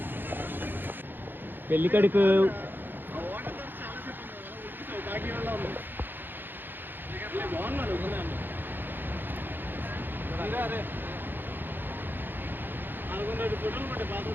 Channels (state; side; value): late; left; 0.095 ms